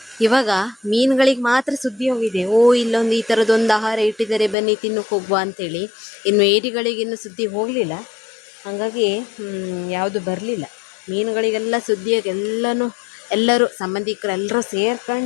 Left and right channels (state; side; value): drops out; right; at 4.5 s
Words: ಇವಾಗ ಮೀನುಗಳಿಗೆ ಮಾತ್ರ ಸುದ್ದಿ ಹೋಗಿದೆ. ಓ, ಇಲ್ಲೊಂದು ಈ ಥರದೊಂದು ಆಹಾರ ಇಟ್ಟಿದ್ದಾರೆ, ಬನ್ನಿ ತಿನ್ನಕ್ಕೆ ಹೋಗುವ ಅಂತೇಳಿ. ಇನ್ನು ಏಡಿಗಳಿಗೆ ಇನ್ನು ಸುದ್ದಿ ಹೋಗಲಿಲ್ಲ. ಹಾಗಾಗಿ ಯಾವುದು ಬರಲಿಲ್ಲ. ಮೀನುಗಳಿಗೆಲ್ಲ ಸುದ್ದಿಯಾಗಿ ಎಲ್ಲರೂ ಸಂಬಂಧಿಕರು ಎಲ್ಲರೂ